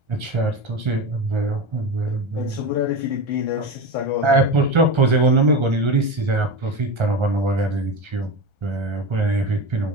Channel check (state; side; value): late; left; 1.3 ms